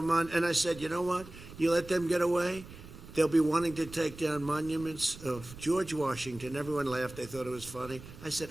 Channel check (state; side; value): noise; right; rumble, 16 dB below the sound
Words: and I said, you know what? You let them get away, they'll be wanting to take down monuments of George Washington. Everyone laughed. They thought it was funny. I said,